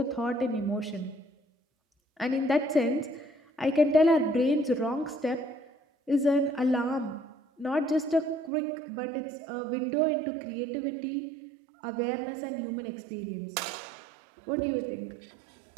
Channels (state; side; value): drops out; left; at 8.5 s